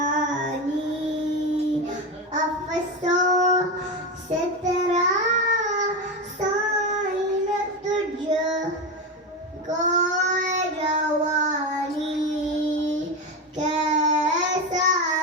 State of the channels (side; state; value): both; normal; correlation 0.16